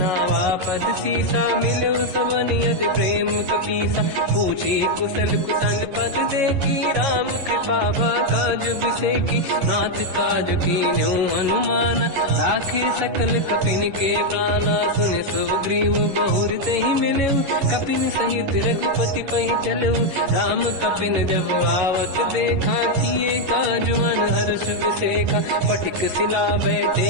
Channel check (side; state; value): left; late; 11 ms